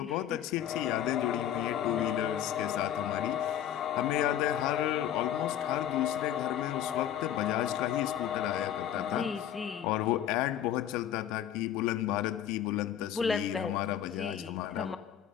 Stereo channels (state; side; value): quieter; right; 10.5 dB